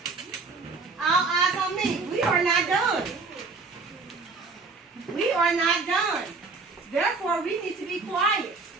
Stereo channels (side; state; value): left; quieter; 4.2 dB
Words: All eyes on me. We are not done. We are not done. Therefore, we need to be quiet.